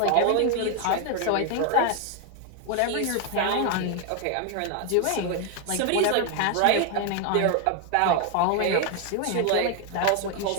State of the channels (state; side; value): different; both; correlation 0.01